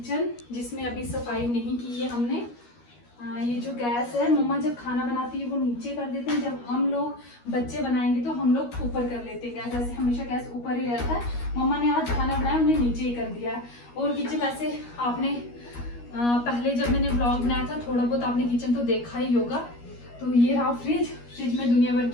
जिसमें अभी सफाई नहीं की है हमने। ये जो गैस है, मम्मा जब खाना बनाती है वो नीचे कर देते हैं, जब हम लोग बच्चे बनाएंगे तो हम लोग ऊपर कर लेते हैं गैस। ऐसे हमेशा गैस ऊपर ही रहता है। मम्मा ने आज खाना बनाया, उन्हें नीचे ही कर दिया है। और किचन वैसे आपने पहले जब मैंने ब्लॉग बनाया था, थोड़ा बहुत आपने किचन तो देखा ही होगा। तो ये रहा फ्रिज में दुनिया भर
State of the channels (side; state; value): right; late; 13 ms